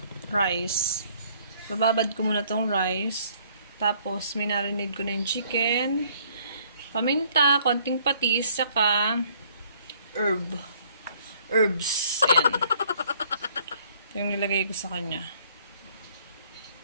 rice. Bababad ko muna tong rice. Tapos, minarinade ko na yung chicken, paminta, konting patis, saka herbs. Ayan. Ito yung nilagay ko sa kanya.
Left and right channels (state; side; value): inverted; both; correlation -0.61